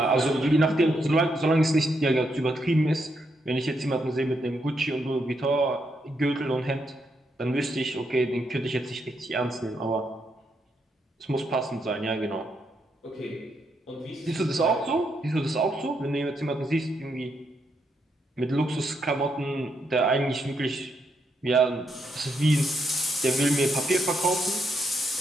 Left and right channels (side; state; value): both; normal; correlation 0.79